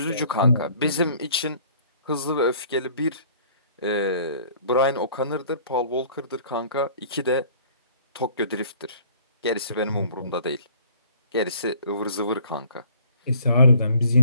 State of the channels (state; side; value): inverted; both; correlation -0.54